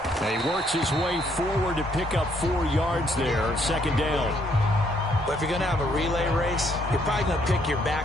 And he works his way forward to pick up 4 yards there. 2nd down. But if you're going to have a relay race, you're probably going to pick your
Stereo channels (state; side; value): normal; both; correlation 0.69